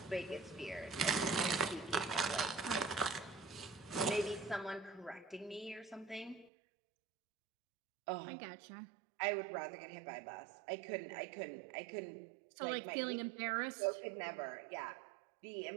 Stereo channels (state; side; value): drops out; left; at 6.5 s